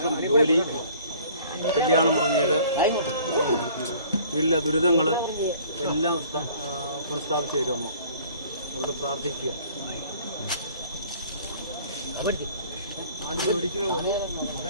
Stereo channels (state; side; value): inverted; both; correlation -0.53